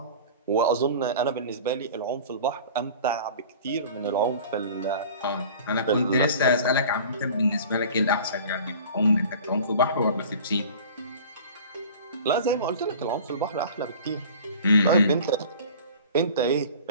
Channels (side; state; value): both; inverted; correlation -0.42